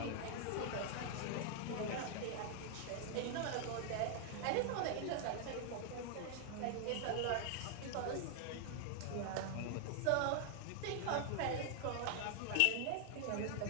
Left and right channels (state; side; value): different; both; correlation 0.00